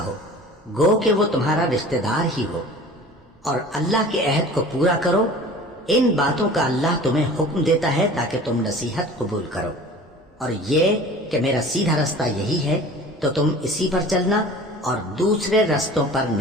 گو کہ وہ تمہارا رشتہ دار ہی ہو، اور اللہ کے عہد کو پورا کرو۔ ان باتوں کا اللہ تمہیں حکم دیتا ہے تاکہ تم نصیحت قبول کرو، اور یہ کہ میرا سیدھا رستہ یہی ہے تو تم اسی پر چلنا، اور دوسرے رستوں پر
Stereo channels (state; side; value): normal; both; correlation 0.42